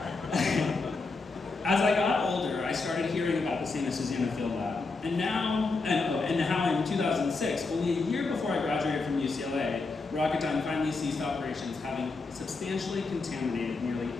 As I got older, I started hearing about the St. Susana Field Lab. And how in 2006, only a year before I graduated from UCLA, Rocketdyne finally ceased operations, having substantially contaminated nearly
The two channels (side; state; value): right; quieter; 3.9 dB